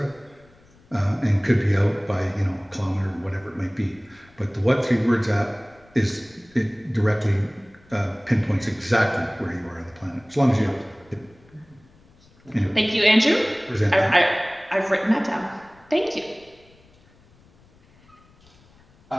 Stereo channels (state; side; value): noise; left; rumble, 29 dB below the sound